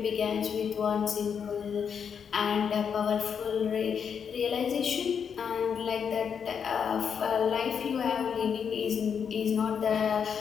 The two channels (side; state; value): right; quieter; 7.1 dB